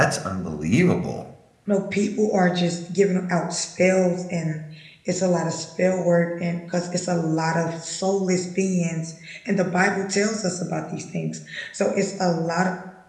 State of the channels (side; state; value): both; identical; correlation 1.00